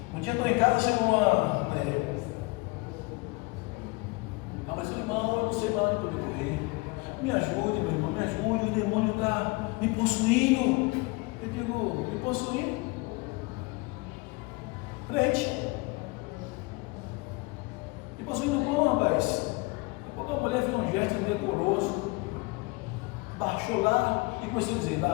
Um dia eu estou em casa, chegou uma mulher. Mas eu irmão, eu não sei mais onde eu correr. Me ajude, meu irmão, me ajude, o demônio está me possuindo. Eu digo: me possuindo? Crente. Me possuindo como, rapaz? Quando a mulher fez um gesto indecoroso, baixou lá e começou a dizer:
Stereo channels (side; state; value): right; quieter; 25.9 dB